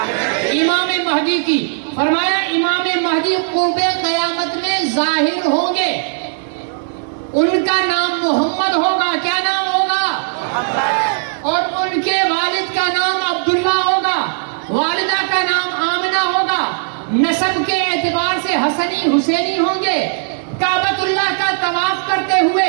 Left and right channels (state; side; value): silent; left; digital silence